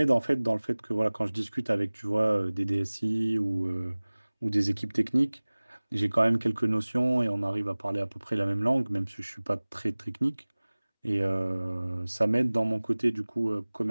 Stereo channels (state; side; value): inverted; both; correlation -1.00